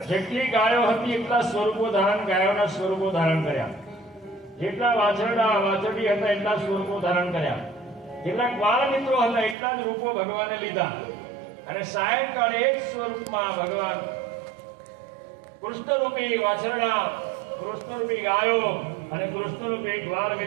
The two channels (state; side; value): drops out; left; at 9.6 s